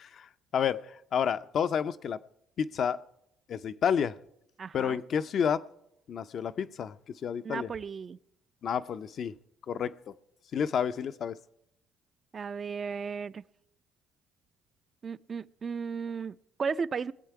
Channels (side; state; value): right; quieter; 4.7 dB